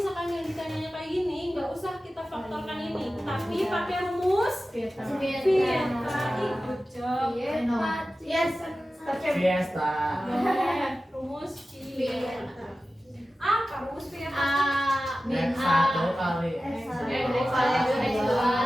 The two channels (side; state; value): both; normal; correlation 0.95